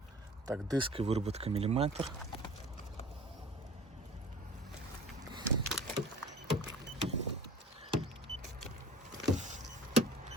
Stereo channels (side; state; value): both; normal; correlation 0.43